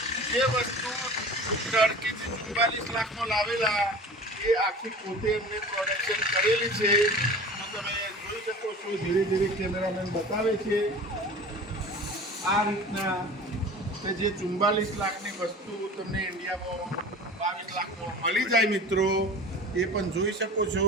જે વસ્તુ ટર્કીથી 44 લાખમાં લાવેલા એ આખી પોતે એમને પ્રોડક્શન કરેલી છે. તો તમે જોઈ શકો છો ધીરે ધીરે કેમેરામેન બતાવે છે આ રીતના કે જે 44 લાખની વસ્તુ તમને ઇન્ડિયામાં 22 લાખમાં મળી જાય મિત્રો, એ પણ જોઈ શકો છો.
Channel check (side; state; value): both; normal; correlation 0.39